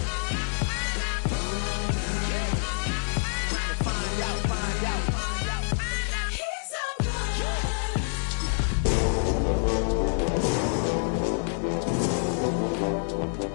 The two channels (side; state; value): right; silent; 57 dB below the other